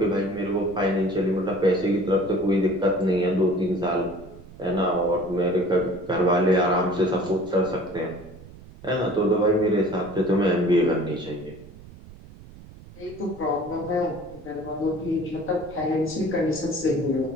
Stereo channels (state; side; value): noise; right; rumble, 19 dB below the sound